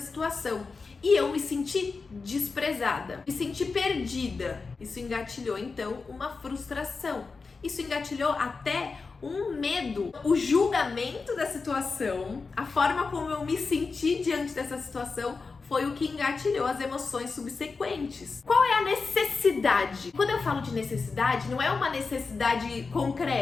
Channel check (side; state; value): right; quieter; 4.4 dB